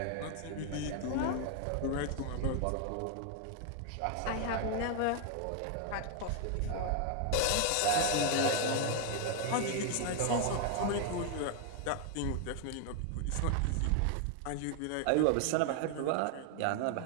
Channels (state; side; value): different; both; correlation 0.00